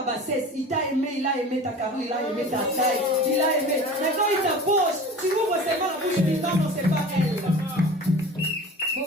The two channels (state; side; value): normal; both; correlation 0.38